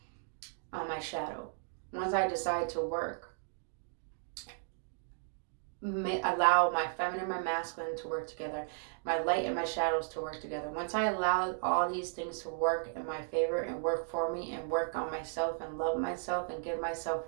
on my shadow, once I decide to work, allow my feminine and my masculine to work together, my light and my shadows to work together. Once I allow all these things to work in my favor and work for me and work on myself and love myself and give myself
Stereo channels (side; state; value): left; silent; digital silence